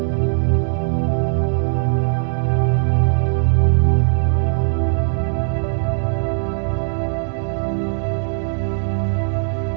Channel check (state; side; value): silent; left; digital silence